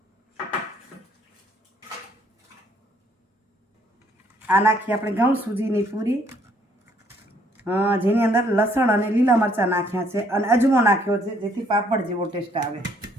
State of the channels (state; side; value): normal; both; correlation 0.65